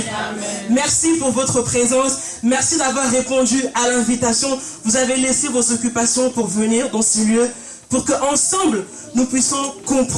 Merci pour votre présence. Merci d'avoir répondu à l'invitation. Vous avez laissé vos occupations pour venir dans ce lieu, pour qu'ensemble, nous puissions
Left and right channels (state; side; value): identical; both; correlation 1.00